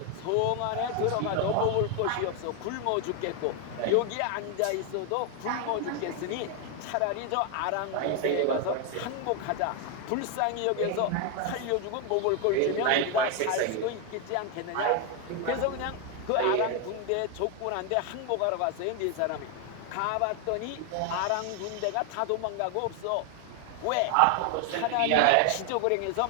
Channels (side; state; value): both; different; correlation 0.01